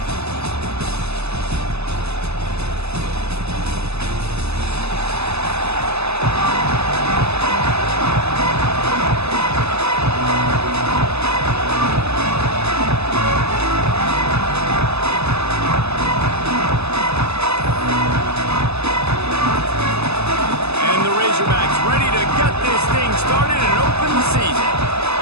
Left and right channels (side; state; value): left; late; 0.79 ms